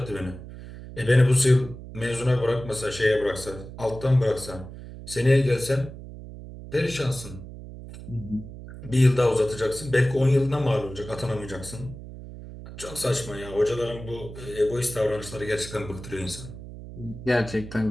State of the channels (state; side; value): noise; right; hum, 13 dB below the sound